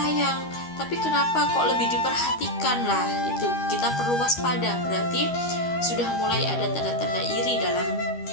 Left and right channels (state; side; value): late; right; 13 ms